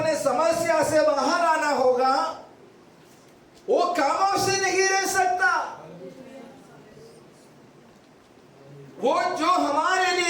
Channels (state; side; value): identical; both; correlation 1.00